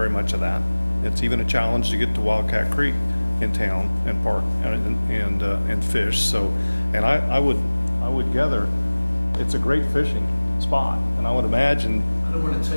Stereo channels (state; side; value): inverted; both; correlation -1.00